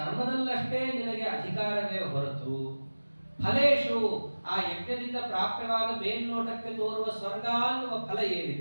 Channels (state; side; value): inverted; both; correlation -1.00